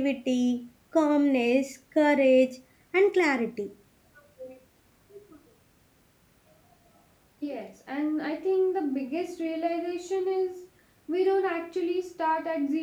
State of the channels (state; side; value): identical; both; correlation 1.00